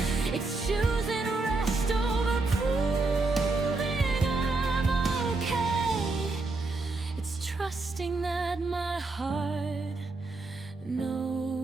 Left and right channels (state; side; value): quieter; left; 3.5 dB